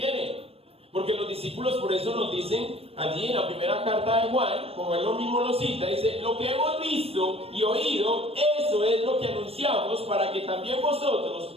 porque los discípulos por eso nos dicen allí en la primera carta de Juan, como él lo mismo lo cita, dice, lo que hemos visto y oído, eso es lo que anunciamos, para que también vosotros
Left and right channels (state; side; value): late; left; 0.28 ms